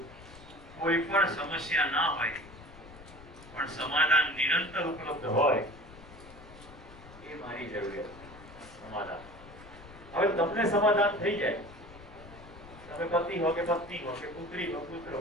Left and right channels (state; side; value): noise; left; rumble, 19 dB below the sound